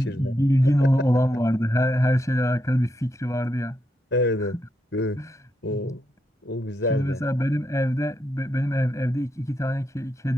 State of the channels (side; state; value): both; normal; correlation 0.82